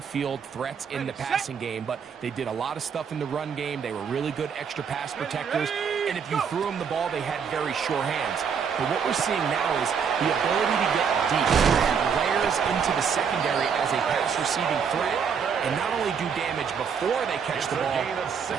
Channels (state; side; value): quieter; left; 6.7 dB